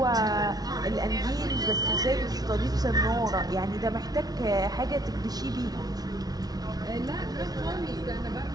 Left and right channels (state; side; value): late; left; 0.19 ms